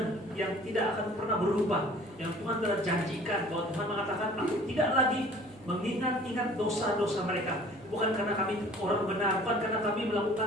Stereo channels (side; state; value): both; normal; correlation 0.50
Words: yang tidak akan pernah berubah, yang Tuhan telah janjikan. Bahwa Tuhan mengatakan, aku tidak lagi mengingat-ingat dosa-dosa mereka. Bukan karena kami orang benar, bukan karena kami